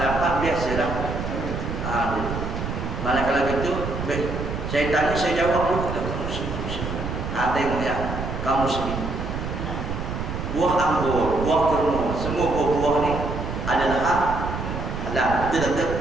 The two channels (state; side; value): noise; right; rumble, 5 dB below the sound